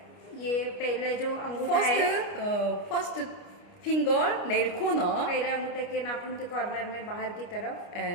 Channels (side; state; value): right; late; 29 ms